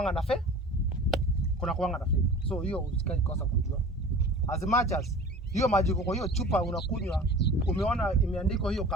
na fake, kuna kuanga na fake. So hiyo usikae kosa kujua. As much as hiyo maji kwa hiyo chupa unakunywa, umeona imeandikwa hiyo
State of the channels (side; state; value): both; normal; correlation 0.41